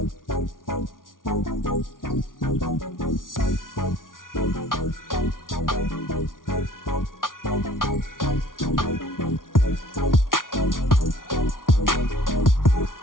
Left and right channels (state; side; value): late; right; 0.89 ms